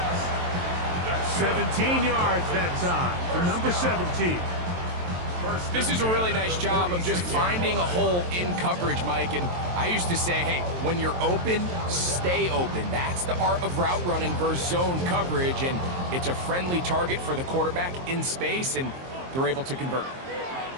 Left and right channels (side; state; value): left; late; 23 ms